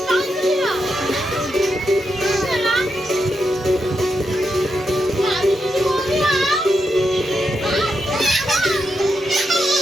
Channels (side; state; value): both; normal; correlation 0.84